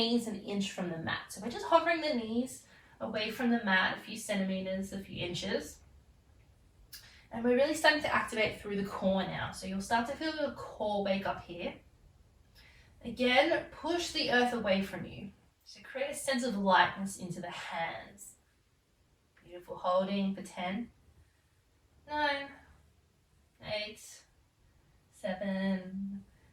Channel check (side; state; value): both; identical; correlation 1.00